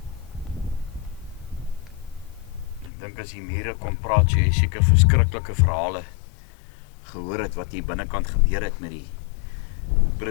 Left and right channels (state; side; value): drops out; right; at 2.9 s